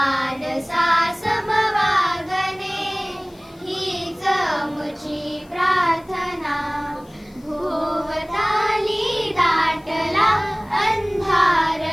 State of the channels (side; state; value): left; noise; hiss, 30 dB below the sound